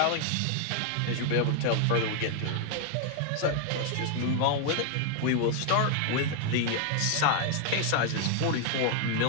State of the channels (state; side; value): different; both; correlation 0.00